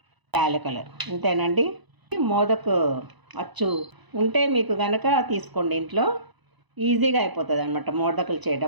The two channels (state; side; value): late; left; 1.0 ms